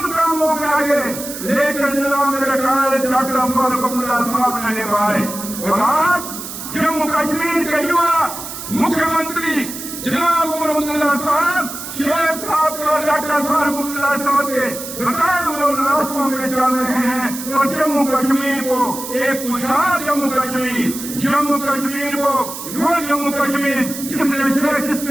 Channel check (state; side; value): noise; right; hiss, 9 dB below the sound